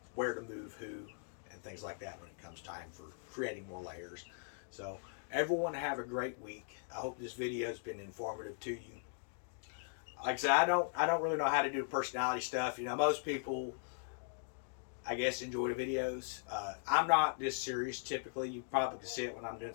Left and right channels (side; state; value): right; silent; digital silence